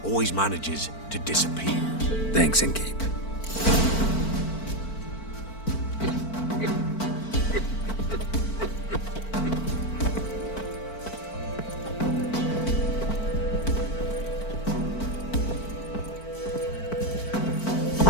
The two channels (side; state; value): right; late; 4.5 ms